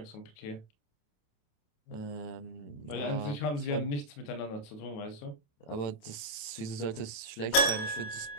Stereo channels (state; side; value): late; right; 28 ms